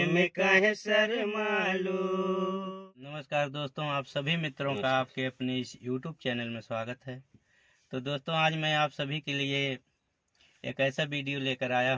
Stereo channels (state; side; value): identical; both; correlation 1.00